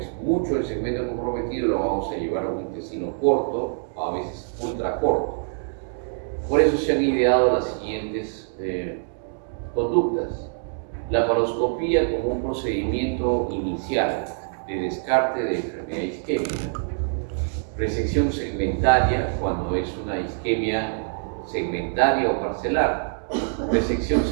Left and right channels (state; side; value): silent; left; digital silence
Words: mucho el segmento comprometido, lo vamos a llevar a un intestino corto, o a veces ultra corto. Por eso se han ideado las siguientes conductas. Laparoscopía como un procedimiento inicial de descarte de enfermedad isquémica. Resección segmentaria cuando es una isquemia segmentaria o parcelar. Resección